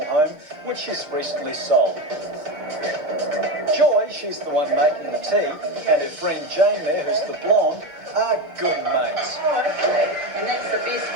home, which she's recently sold. Joy, she's the one making the tea, and her friend Jane there, who's the blonde, are good mates. Oh, okay. And that's the best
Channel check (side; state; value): left; late; 6.6 ms